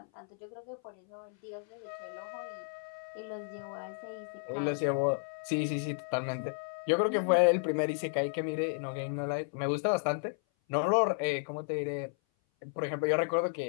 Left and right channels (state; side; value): silent; right; 56 dB below the other